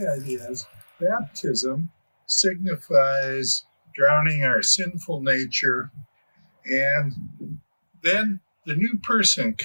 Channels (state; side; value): inverted; both; correlation -1.00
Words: is baptism signifies drowning our sinful nature, and then the new person